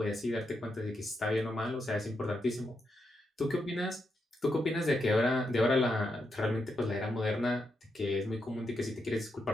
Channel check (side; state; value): both; normal; correlation 0.83